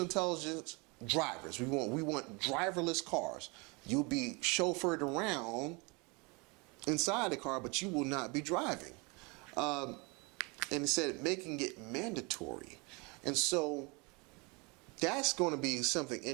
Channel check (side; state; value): left; quieter; 28.8 dB